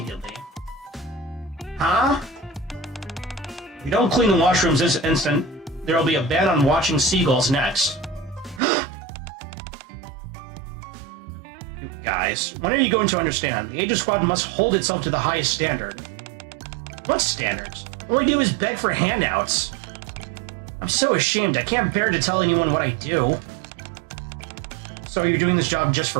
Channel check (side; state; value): left; drops out; at 8.6 s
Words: Huh? If you don't clean the washrooms this instant, there will be a ban on watching seagulls next. You guys, when are you going to understand? The Aegis Squad must hold itself to the highest standard. What standards? All I do is beg for handouts. I'm so ashamed, I can't bear to tell anyone what I do. So you're doing this job just